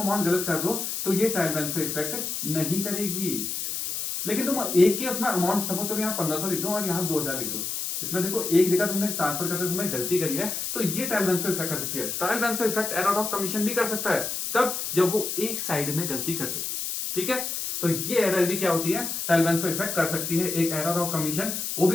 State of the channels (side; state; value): left; noise; hiss, 3 dB below the sound